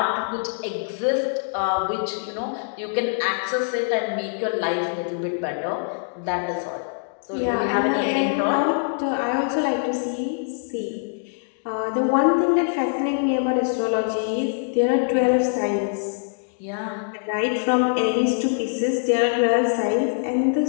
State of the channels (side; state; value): right; silent; digital silence